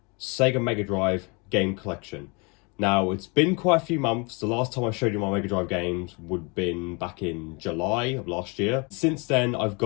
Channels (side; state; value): right; quieter; 30.6 dB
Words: Sega Mega Drive game collection. Now it's been quite a few months. The last time I showed you my Mega Drive games would have been back in July of last year. Since then I've